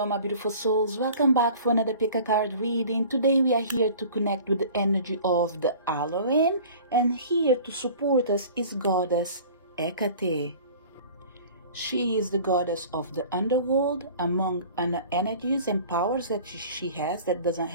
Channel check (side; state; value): both; inverted; correlation -0.45